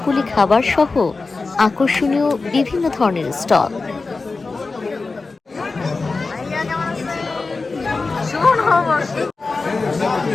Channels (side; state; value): right; quieter; 3.9 dB